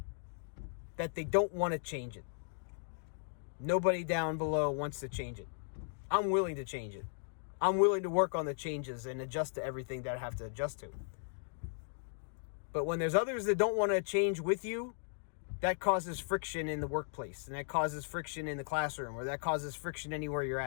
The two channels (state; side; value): silent; right; digital silence